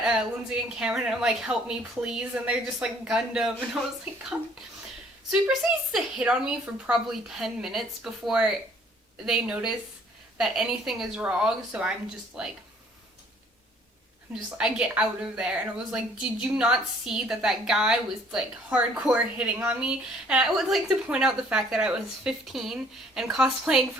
Lindsay and Cameron, and I'm like, help me, please. And they're just like, Gundam. And I was like, God. So he proceeds to hit on me for probably 10 minutes before they notice that anything is wrong. So I get out of there. And I was like, did you not see that guy was, like, hardcore hitting on me? And I would like to point out the fact that I was 15 and cosplaying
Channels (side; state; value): both; normal; correlation 0.59